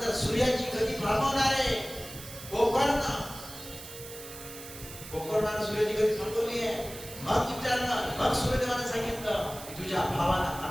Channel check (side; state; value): right; noise; hiss, 13 dB below the sound